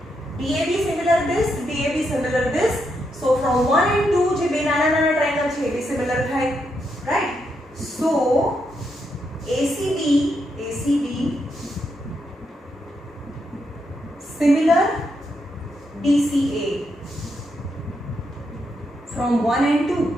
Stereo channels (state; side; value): normal; both; correlation 0.81